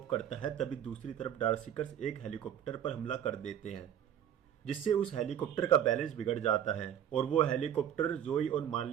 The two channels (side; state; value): left; quieter; 9.9 dB